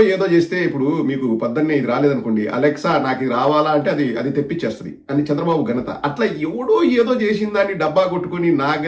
ఏదో చేస్తే, ఇప్పుడు మీకు పొద్దున్నే ఇది రాలేదనుకోండి, అలెక్సా నాకు ఇది రావాలా అంటే అది తెప్పించేస్తుంది అని చంద్రబాబు ఘనత. అట్లా ఎవడో ఏదో చేసిన దాన్ని డబ్బా కొట్టుకుని నా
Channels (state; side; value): identical; both; correlation 1.00